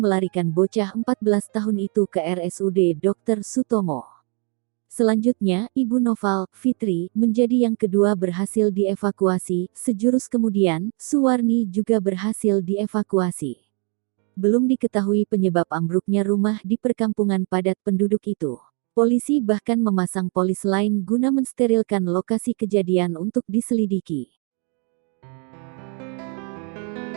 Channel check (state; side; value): quieter; left; 38.1 dB